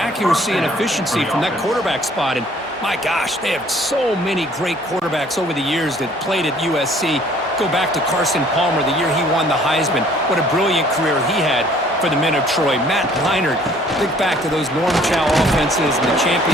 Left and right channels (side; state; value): both; normal; correlation 0.57